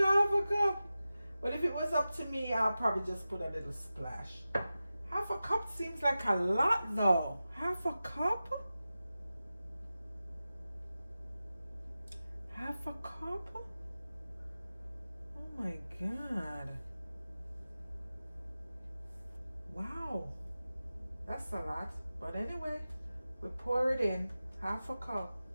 a half a cup. But if it was up to me, I'll probably just put a little splash. Half a cup seems like a lot though. Half a cup? Half a cup? Oh my God. Wow. That's a lot. But anyway, we pour it in. Half a cup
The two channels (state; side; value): inverted; both; correlation -0.94